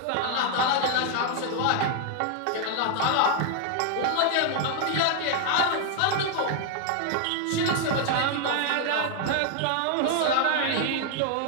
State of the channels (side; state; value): both; different; correlation 0.00